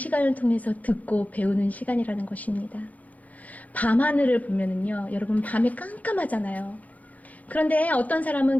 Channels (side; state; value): right; late; 0.075 ms